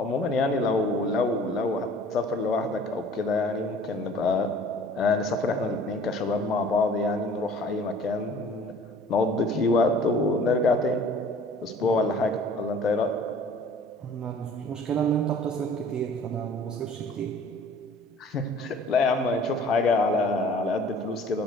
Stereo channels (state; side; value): normal; both; correlation 0.50